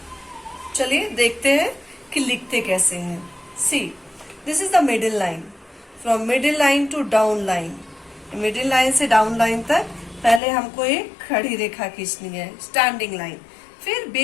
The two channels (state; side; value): drops out; right; at 10.4 s